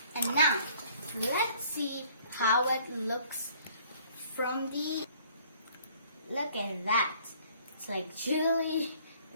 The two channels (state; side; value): inverted; both; correlation -0.57